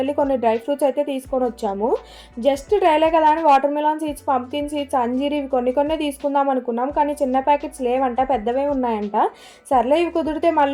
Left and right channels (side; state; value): both; identical; correlation 1.00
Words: కొన్ని డ్రై ఫ్రూట్స్ అయితే తీసుకొని వచ్చాము. జస్ట్ ట్రైలే కదా అని watermelon seeds, pumpkin seeds, అంజీర్ ఇవి కొన్ని తీసుకుందాం అనుకున్నాం. కానీ చిన్న ప్యాకెట్స్ లేవంట, పెద్దవే ఉన్నాయంట. సర్లే ఇవి కుదిరితే